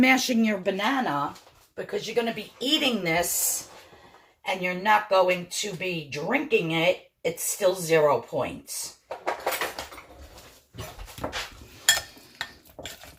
your banana, because you're gonna be eating this and you're not going to be drinking it, it's still 0 points.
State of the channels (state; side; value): identical; both; correlation 1.00